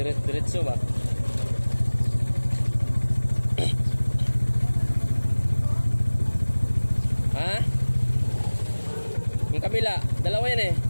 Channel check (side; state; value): both; inverted; correlation -1.00